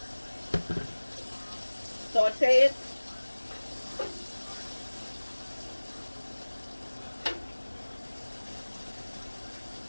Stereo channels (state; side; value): inverted; both; correlation -1.00